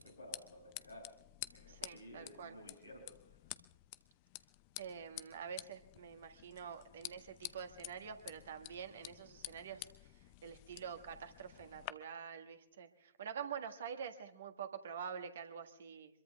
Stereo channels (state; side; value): inverted; both; correlation -0.39